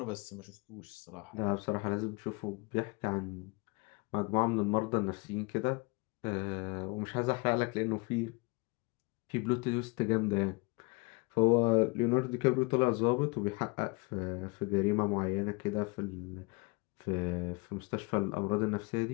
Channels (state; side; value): quieter; right; 28.3 dB